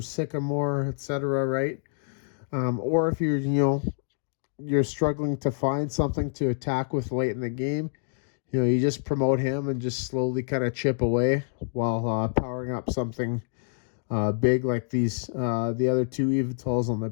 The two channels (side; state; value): right; silent; digital silence